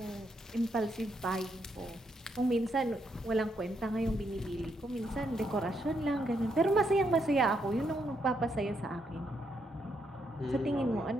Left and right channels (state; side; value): normal; both; correlation 0.77